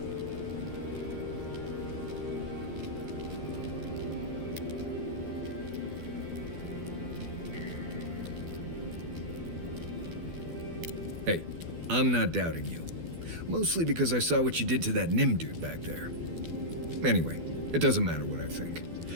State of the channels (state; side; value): late; left; 12 ms